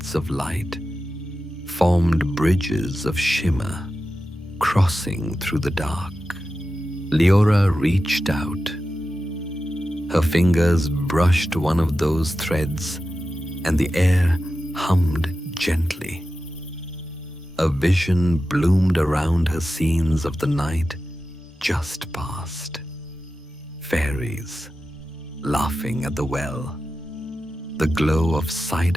of light formed bridges of shimmer, crossing through the dark. Leora reached out. Her fingers brushed one of those threads, and the air hummed gently. A vision bloomed around her scenes of the night just past. Fairies laughing at the well, the glow of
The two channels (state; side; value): normal; both; correlation 0.92